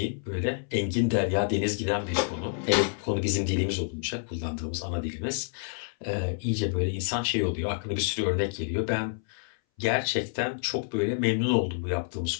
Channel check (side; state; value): right; silent; 59 dB below the other